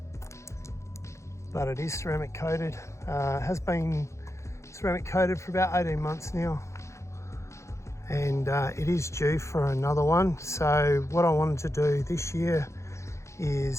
but it is ceramic coated. Has been ceramic coated for about 18 months now, and it is due for another one. So what I wanted to do this year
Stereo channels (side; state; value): right; late; 0.14 ms